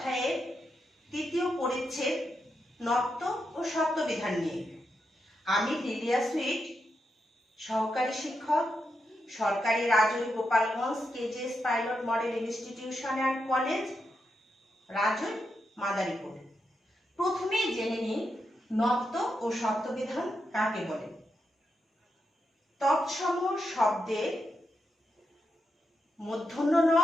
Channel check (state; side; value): normal; both; correlation 0.85